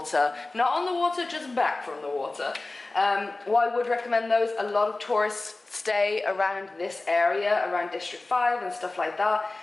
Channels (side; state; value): right; quieter; 3.1 dB